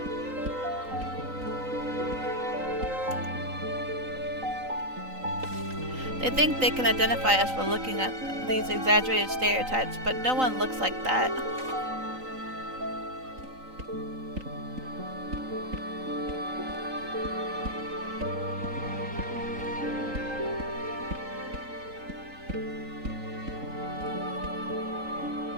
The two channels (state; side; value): late; left; 3.9 ms